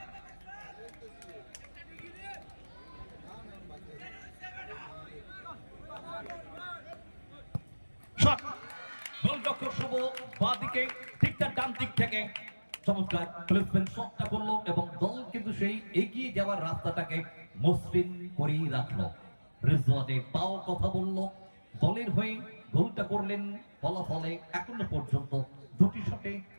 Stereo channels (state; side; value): inverted; both; correlation -1.00